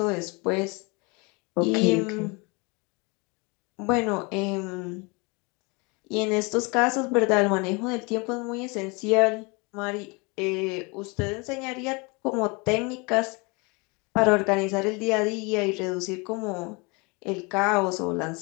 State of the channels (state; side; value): quieter; right; 29.0 dB